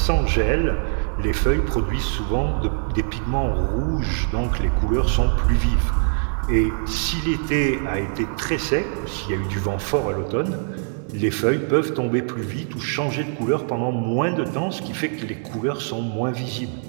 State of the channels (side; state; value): left; silent; digital silence